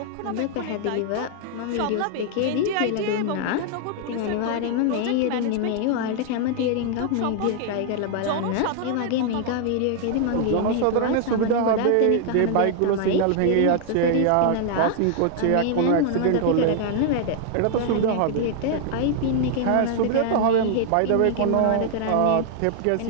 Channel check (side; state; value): both; different; correlation 0.00